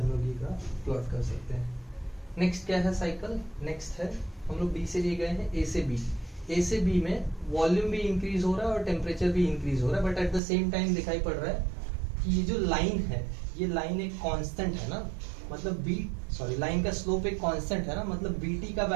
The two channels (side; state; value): left; drops out; at 10.4 s